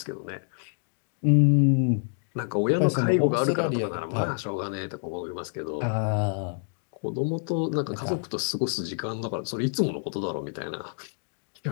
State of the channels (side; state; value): right; silent; digital silence